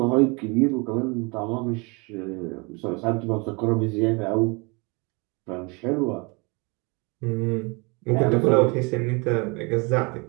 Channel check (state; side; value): quieter; left; 29.4 dB